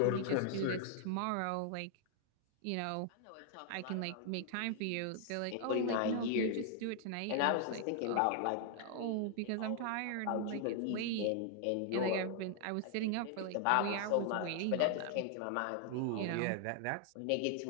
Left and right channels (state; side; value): different; both; correlation 0.00